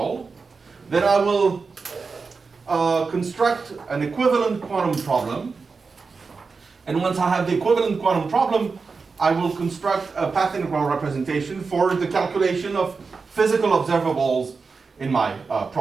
Then I will construct an equivalent quantum problem. And once I have the equivalent quantum problem, I will construct a path integral representation for the calculation of physical observables in my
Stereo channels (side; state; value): left; quieter; 4.7 dB